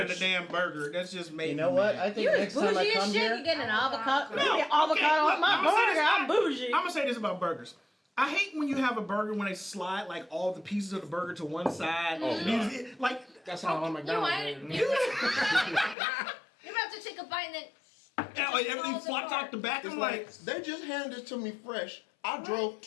of the bitch. damn burger. That's just made You know what? I think You're next time I bougie as come shit. here, You get an avocado. No, You get avocado okay, on look, my I'ma say burger. this- I'm bougie. I'm gonna say this about burgers. I hate when you have a burger when they slide like all the pieces of the burger to one side. Like That's how on McDonald's. You're about to take a bite and then. like everything flops out the back. It's I'm like like, they just handed it to me fresh. I drove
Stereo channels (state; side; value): drops out; right; at 16.0 s